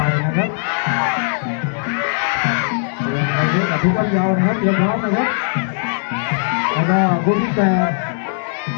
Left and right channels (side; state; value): right; silent; 67 dB below the other